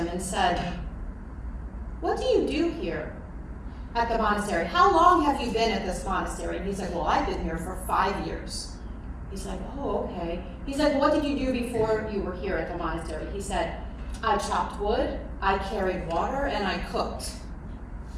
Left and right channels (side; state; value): both; identical; correlation 1.00